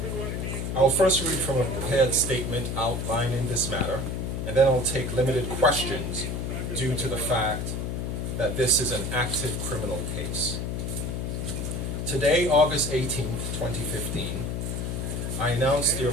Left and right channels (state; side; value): noise; left; hum, 2 dB below the sound